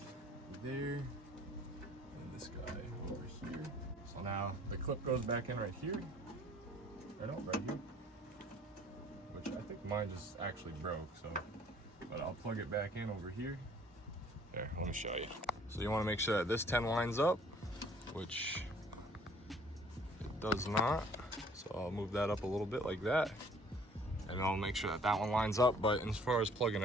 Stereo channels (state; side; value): normal; both; correlation 0.55